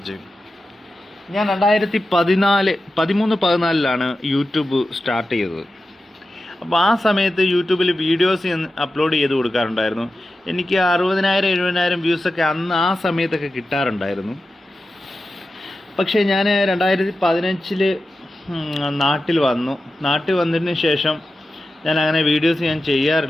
ഞാൻ 2013-14 യൂട്യൂബ് സ്റ്റാർട്ട് ചെയ്തത്. അപ്പോൾ ആ സമയത്ത് യൂട്യൂബിൽ വീഡിയോസ് അപ്ലോഡ് ചെയ്ത് കൊടുക്കാറുണ്ടായിരുന്നു. എനിക്ക് 60,000-70,000 വ്യൂസൊക്കെ ആ സമയത്തൊക്കെ കിട്ടാറുണ്ടായിരുന്നു. പക്ഷേ ഞാൻ 2015 നാട്ടിൽ വന്നതിന് ശേഷം ഞാൻ അങ്ങനെ വീഡിയോസ്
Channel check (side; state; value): both; normal; correlation 0.92